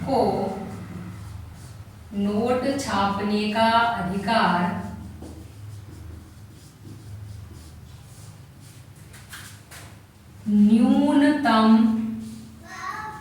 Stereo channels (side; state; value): both; identical; correlation 1.00